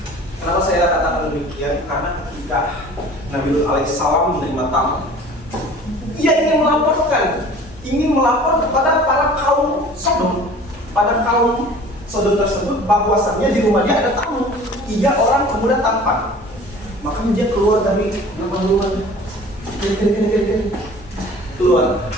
Kenapa saya katakan demikian? Karena ketika ketika Nabi Lut alaihissalam menerima tamu, ia ingin melapor kepada para kaum Sodom, tersebut bahwasannya di rumahnya ada tamu, 3 orang pemuda tampan. Maka dia keluar dari rumah-rumahnya, keluar,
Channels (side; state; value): both; normal; correlation 0.45